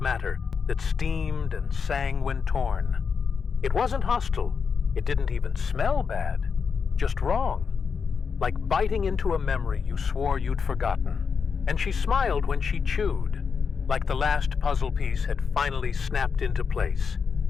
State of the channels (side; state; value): right; quieter; 5.8 dB